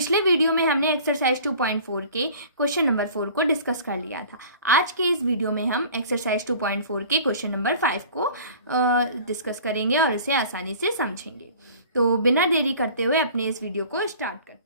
वीडियो में हमने एक्सरसाइज 2.4 के क्वेश्चन नंबर 4 को डिस्कस कर लिया था। आज के इस वीडियो में हम एक्सरसाइज 2.4 के क्वेश्चन नंबर 5 को डिस्कस करेंगे और इसे आसानी से समझेंगे। तो बिना देरी करते हुए अपने इस वीडियो को स्टार्ट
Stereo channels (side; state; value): both; inverted; correlation -0.45